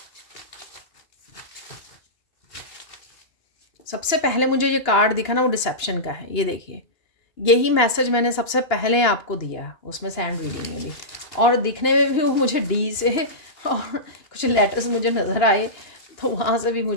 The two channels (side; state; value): right; late; 2.9 ms